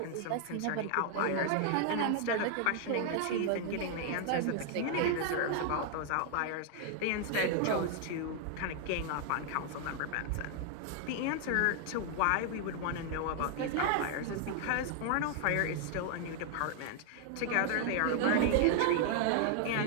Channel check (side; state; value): both; different; correlation 0.00